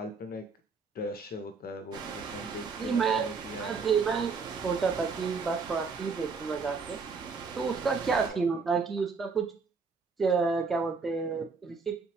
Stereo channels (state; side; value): quieter; left; 4.8 dB